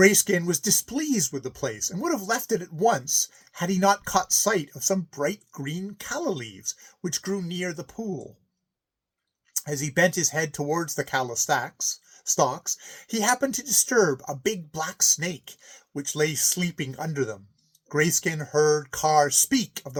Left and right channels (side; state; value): both; identical; correlation 1.00